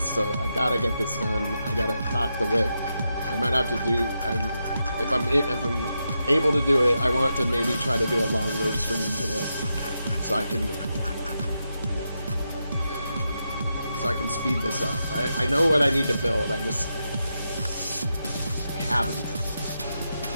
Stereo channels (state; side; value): inverted; both; correlation -0.86